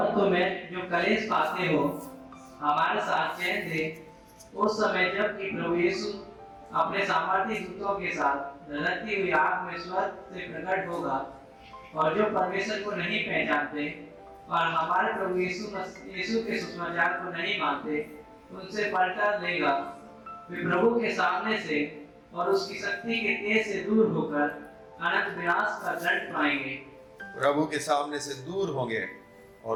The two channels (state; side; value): identical; both; correlation 1.00